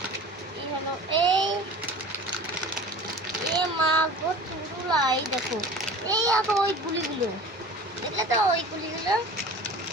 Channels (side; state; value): both; normal; correlation 0.40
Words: এই হলো এ মা গো চুরুলা। এই দেখো, এই দেখো ওই গুলিগুলো, দেখলে তো ওই গুলিগুলো।